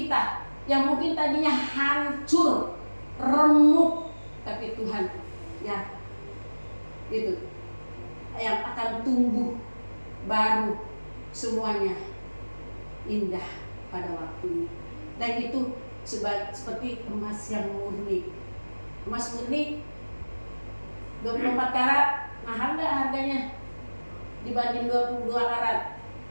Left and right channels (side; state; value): both; inverted; correlation -1.00